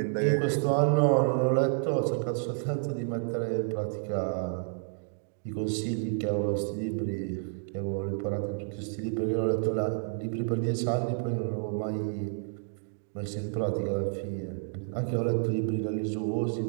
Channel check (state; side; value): silent; left; digital silence